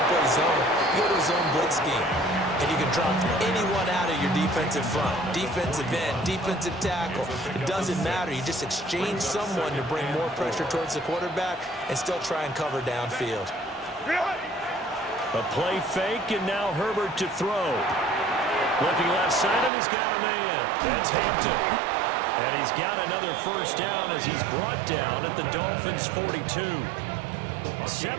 play zone, you go to a zone blitz scheme. And you can drop anyone out of your defensive front. Defensive end, defensive tackle. It doesn't matter. You just exchange someone to bring more pressure towards the quarterback and still try and cover downfield. A play fake, and now Herbert to throw. Looking left side, and he's got a man. That's Hampton. And he's got another 1st down as he's brought down at the Dolphins' 42.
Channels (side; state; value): left; drops out; at 19.7 s